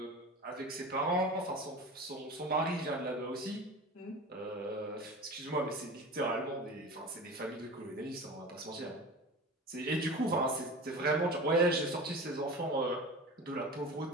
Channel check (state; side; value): normal; both; correlation 0.33